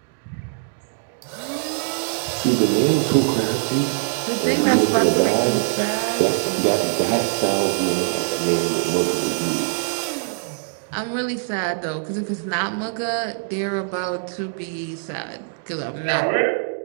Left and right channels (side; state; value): left; silent; 64 dB below the other